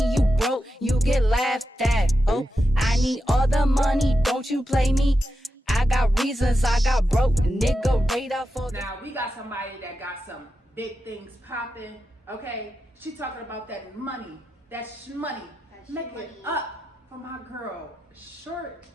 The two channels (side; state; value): both; normal; correlation 0.89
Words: you broke, you get laughed at, ho? I need all the money, don't you play me? I got reasons, I got broke, nigga radar for the... Now, we got somebody that got some big things popping, okay? She talking about that money, that shmoney. Make it up for my girl, Short.